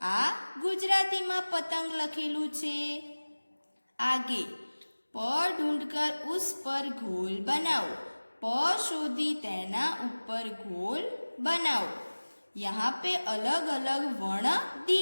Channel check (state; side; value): inverted; both; correlation -1.00